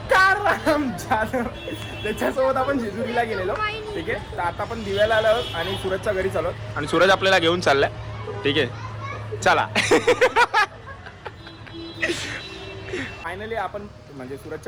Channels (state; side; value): identical; both; correlation 1.00